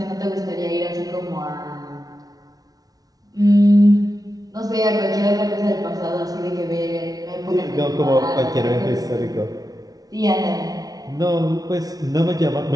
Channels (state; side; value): late; left; 0.18 ms